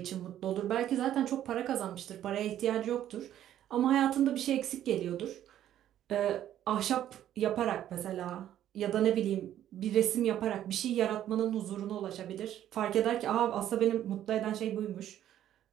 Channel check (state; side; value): quieter; left; 11.5 dB